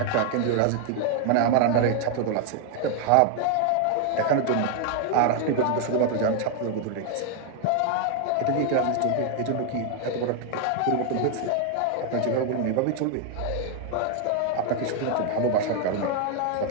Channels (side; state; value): both; different; correlation 0.00